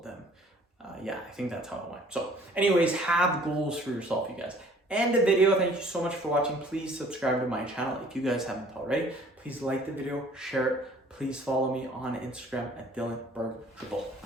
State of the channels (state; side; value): normal; both; correlation 0.54